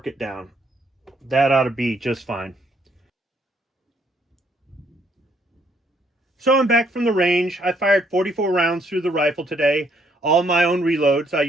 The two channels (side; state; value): both; normal; correlation 0.69